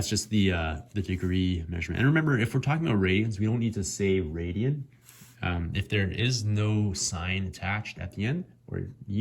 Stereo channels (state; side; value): identical; both; correlation 1.00